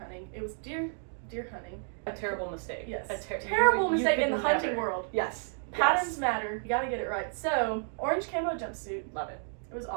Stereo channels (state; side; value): silent; left; 56 dB below the other